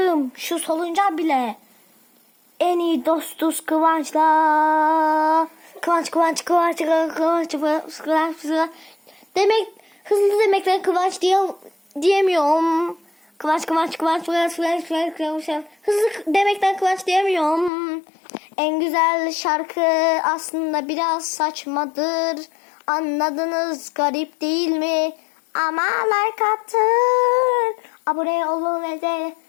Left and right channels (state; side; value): drops out; right; at 17.7 s